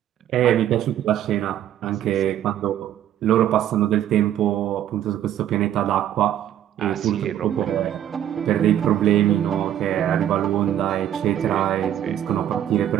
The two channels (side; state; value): left; quieter; 11.2 dB